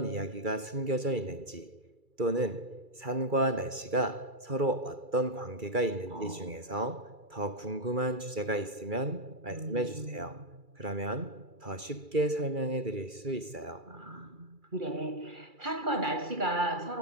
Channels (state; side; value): late; left; 2.3 ms